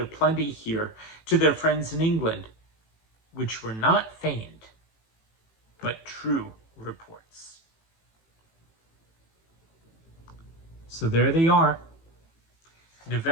plenty here to their friends in England, which were not feigned, but true reports. So there they are,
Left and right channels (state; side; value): late; right; 18 ms